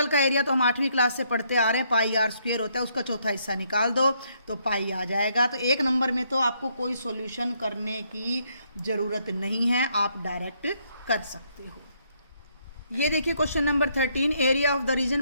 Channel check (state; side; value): inverted; both; correlation -0.72